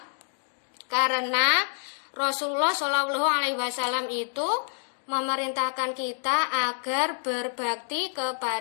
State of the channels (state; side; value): silent; right; digital silence